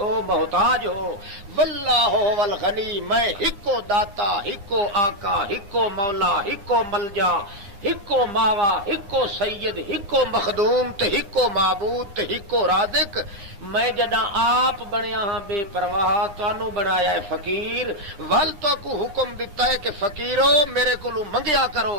محتاج ہو، واللہ هو الغنی، میں ہکو داتا، ہکو آقا، ہکو مولا، ہکو ملجا، ہکو ماوا، ہکو سید، ہکو مخدوم تے ہکو معبود تے ہکو رازق۔ میں جڑا آپ بنیا ہاں بے پرواہ، تانوں بنایا ہے فقیر، ول تو کو حکم دیتا ہے کہ فقیرو میرے کولو منگیا کرو۔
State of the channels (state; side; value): late; left; 9.7 ms